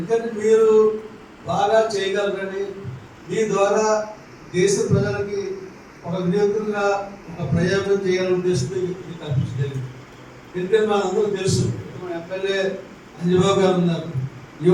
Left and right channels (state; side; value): identical; both; correlation 1.00